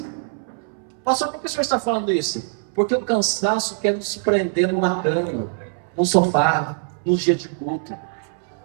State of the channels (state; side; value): silent; left; 64 dB below the other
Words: Pastor, por que o senhor está falando isso? Porque o cansaço quer nos prender numa cama, num sofá, nos dias de culto.